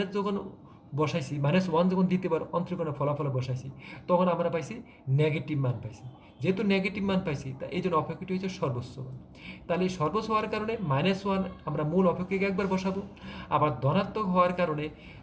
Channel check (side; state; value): both; identical; correlation 1.00